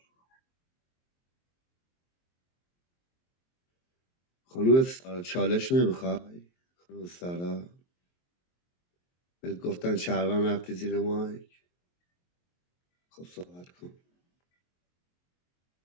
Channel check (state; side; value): late; right; 23 ms